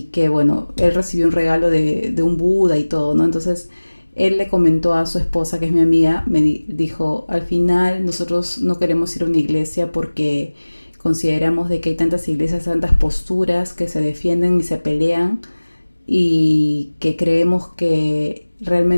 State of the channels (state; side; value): inverted; both; correlation -1.00